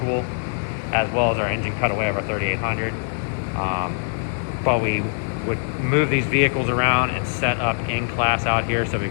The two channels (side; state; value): right; silent; digital silence